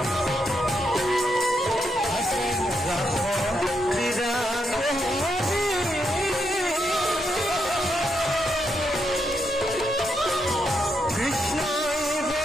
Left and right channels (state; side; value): normal; both; correlation 0.80